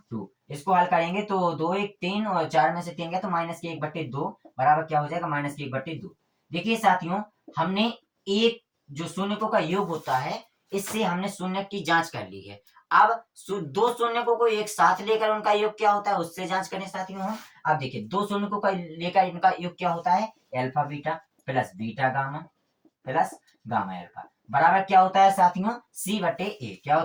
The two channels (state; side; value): identical; both; correlation 1.00